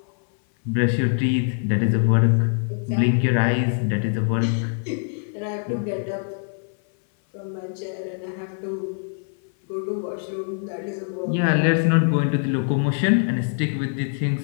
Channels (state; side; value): silent; right; 58 dB below the other